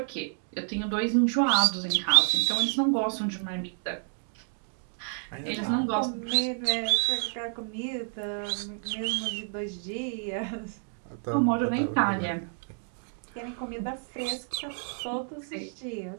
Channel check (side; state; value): left; silent; 58 dB below the other